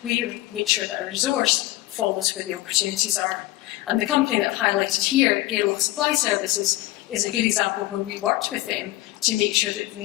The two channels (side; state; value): right; quieter; 17.7 dB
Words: We make sure that our resource follows where the opportunities are. And the company that I've highlighted here, Airlock Supply Services, is a good example where we worked with them to make sure that we